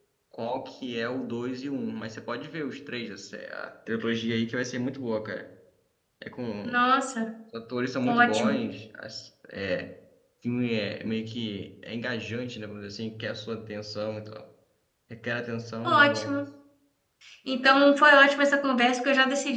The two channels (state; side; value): identical; both; correlation 1.00